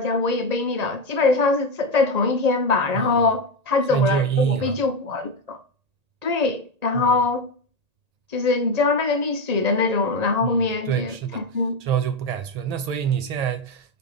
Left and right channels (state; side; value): late; left; 1.8 ms